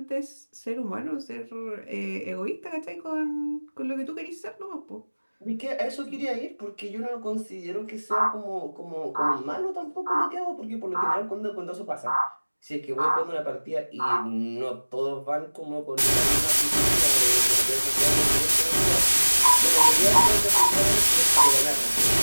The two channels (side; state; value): both; inverted; correlation -1.00